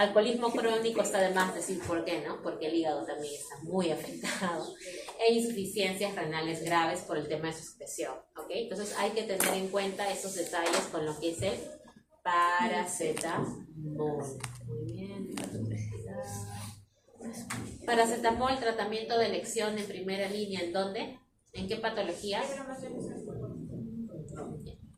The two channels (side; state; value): both; identical; correlation 1.00